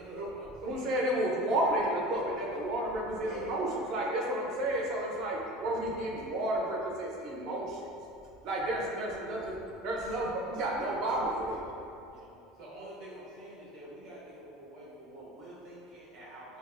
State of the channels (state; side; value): normal; both; correlation 0.37